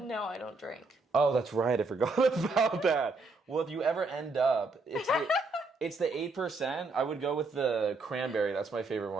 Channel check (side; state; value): left; quieter; 3.5 dB